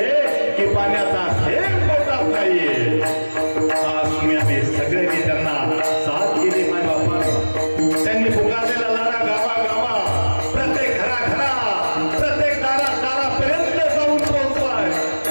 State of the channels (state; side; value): inverted; both; correlation -1.00